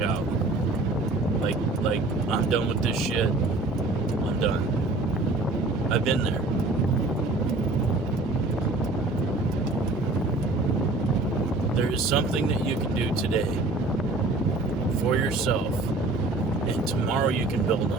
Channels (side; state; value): left; quieter; 3.2 dB